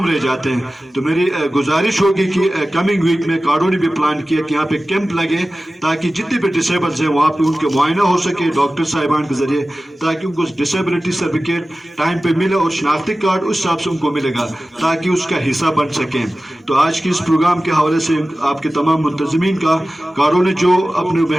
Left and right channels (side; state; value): both; normal; correlation 0.96